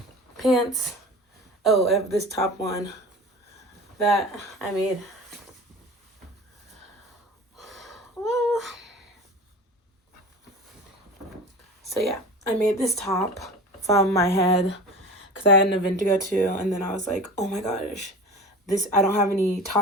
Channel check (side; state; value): both; normal; correlation 0.35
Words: pants. Oh, I have this top one that I made. Whoa. So yeah, I made this top from my head because I had an event to go to, and then I was like, oh my gosh, I don't have any